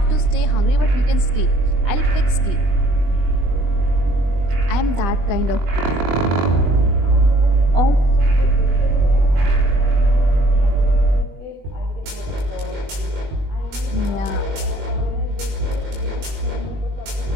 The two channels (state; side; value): late; left; 21 ms